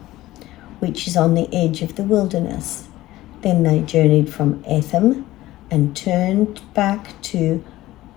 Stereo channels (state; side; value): quieter; right; 16.3 dB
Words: which is on the edge of the wilderness. Then they journeyed from Etham and turned back to